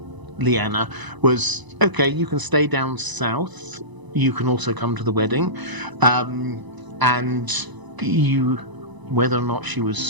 Lyanna was, okay, you can stay down south. You can also come to the wedding. And whether or not she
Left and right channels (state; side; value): late; left; 1.0 ms